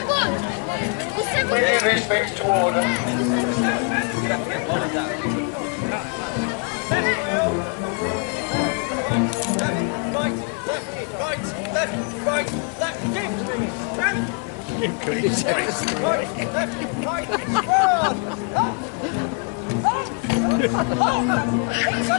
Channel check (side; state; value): right; quieter; 36.2 dB